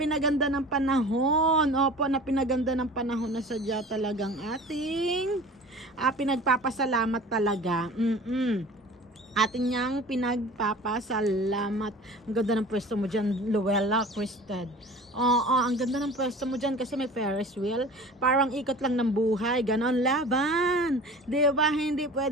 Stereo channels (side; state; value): both; normal; correlation 0.41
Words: ng panahon. Opo, na pinaganda ng panahon na sadya talagang ating pinagpapasalamat talaga. Ating niyang pinagpapasalamat. Ang ganda ng pwesto mo dyan, Luella Crested. Ang ganda ng pwesto mo dyan kasi may Ferris wheel. Parang ikot lang ng buhay. Ganon, laban. Diba? Hindi